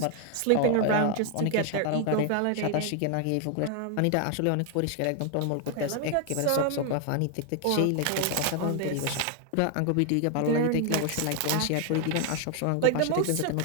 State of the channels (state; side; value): different; both; correlation 0.00